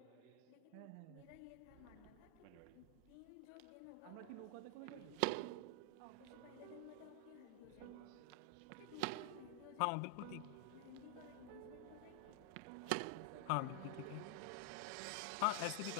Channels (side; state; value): both; different; correlation 0.00